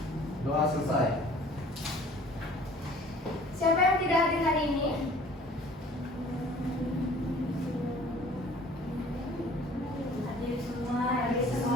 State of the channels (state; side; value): normal; both; correlation 0.50